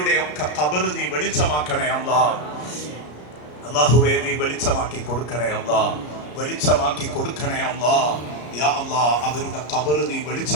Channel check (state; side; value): late; right; 34 ms